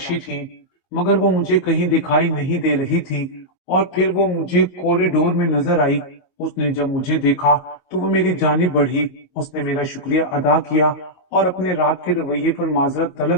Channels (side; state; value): right; late; 22 ms